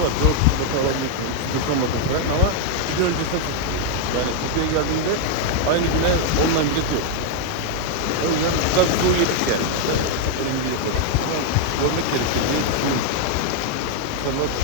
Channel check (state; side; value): different; both; correlation 0.00